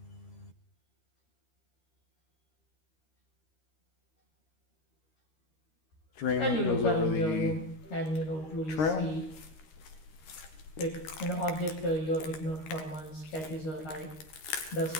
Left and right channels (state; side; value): late; right; 13 ms